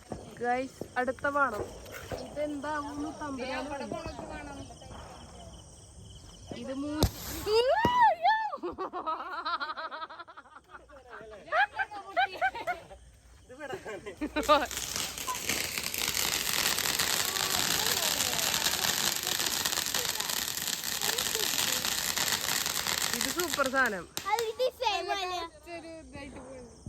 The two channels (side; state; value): both; identical; correlation 1.00